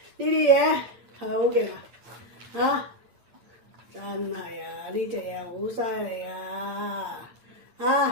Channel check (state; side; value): late; left; 8.6 ms